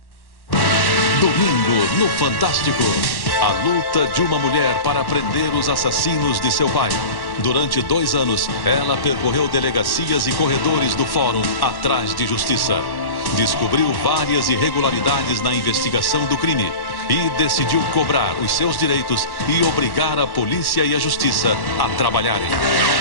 Domingo no Fantástico. A luta de uma mulher para prender os assassinos de seu pai. Durante 2 anos, ela percorreu delegacias e corredores do fórum atrás de justiça. Descobriu várias irregularidades na investigação do crime e decidiu cobrar os seus direitos e obrigar a polícia e a justiça a trabalharem.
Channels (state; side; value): late; right; 1.1 ms